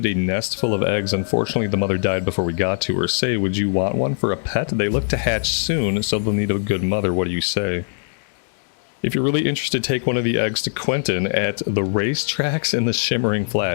a nest full of eggs. Unfortunately, the mother died before we got to her. Say, would you want one for a pet? They look to hatch soon, so they'll need a good mother. What do you say? If you're really interested, take one of the eggs to Quentin at the racetracks in the Shimmering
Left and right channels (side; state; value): right; silent; digital silence